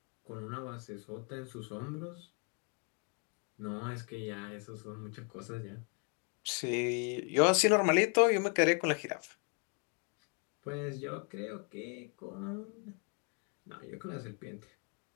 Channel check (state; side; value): quieter; right; 38.5 dB